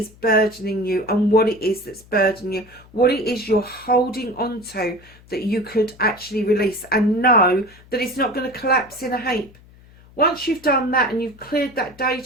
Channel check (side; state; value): left; noise; hum, 25 dB below the sound